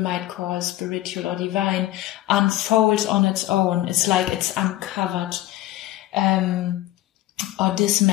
call spiritual or divine unfolds on its own. It's like it's uncovered or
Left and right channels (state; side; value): quieter; right; 15.4 dB